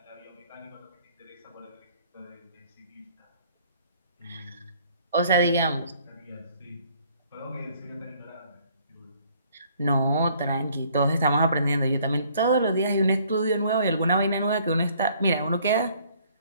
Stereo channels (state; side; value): inverted; both; correlation -0.60